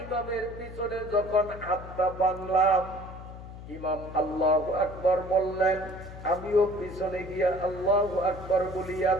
ইমামের পিছনে যখন হাতটা বাঁধলাম, ইমাম আল্লাহু আকবার বললেন, আমিও পিছনে গিয়া আল্লাহু আকবার বলিয়া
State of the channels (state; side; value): noise; left; hum, 13 dB below the sound